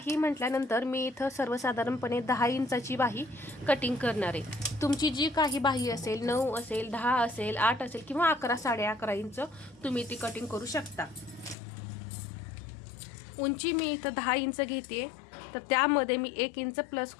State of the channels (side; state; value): right; drops out; at 11.6 s